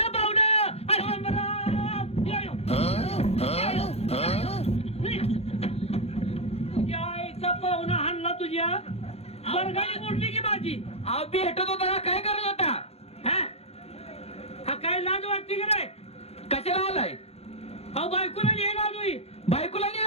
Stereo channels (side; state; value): right; late; 0.30 ms